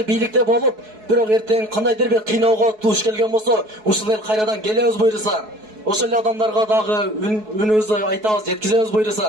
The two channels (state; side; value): late; left; 4.7 ms